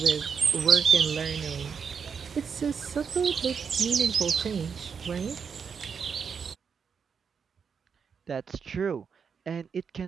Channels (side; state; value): left; quieter; 6.4 dB